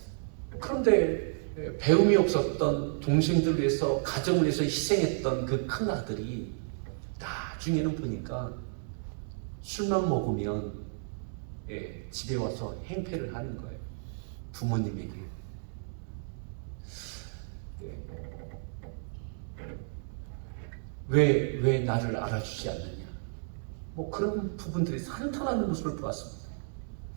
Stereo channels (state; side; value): silent; left; digital silence